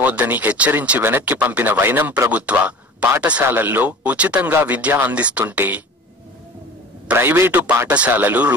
హెచ్చరించి వెనక్కి పంపిన వైనం ప్రభుత్వ పాఠశాలల్లో ఉచితంగా విద్య అందిస్తుంటే ప్రైవేటు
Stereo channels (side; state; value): both; normal; correlation 0.39